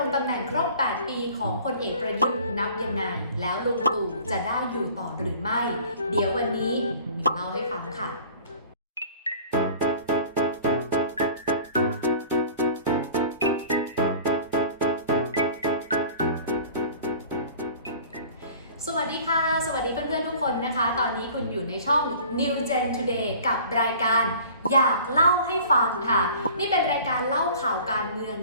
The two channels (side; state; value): both; inverted; correlation -0.46